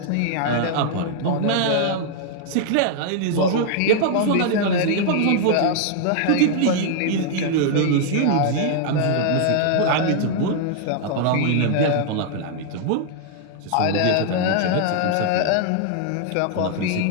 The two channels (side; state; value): both; different; correlation -0.01